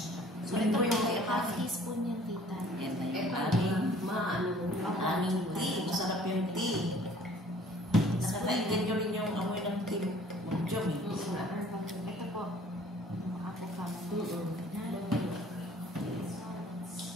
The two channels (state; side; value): normal; both; correlation 0.53